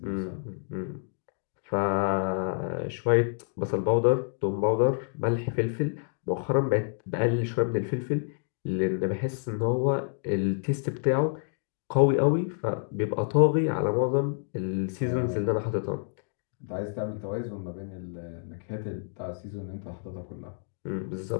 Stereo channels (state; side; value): silent; right; digital silence